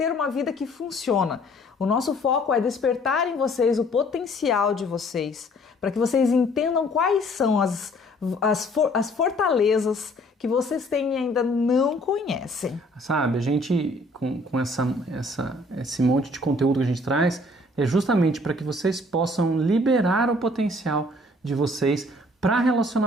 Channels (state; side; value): normal; both; correlation 0.58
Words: uma vida que funciona. O nosso foco é despertar em vocês o potencial de vocês, para que vocês entendam quais são as fortalezas que vocês têm e ainda não conhecem. Sabe, a gente, com esse monte de conteúdo que a gente traz, é justamente para que vocês possam liberar o potencial de vocês para